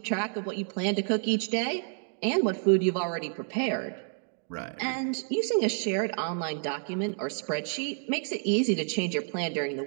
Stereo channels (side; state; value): left; silent; 58 dB below the other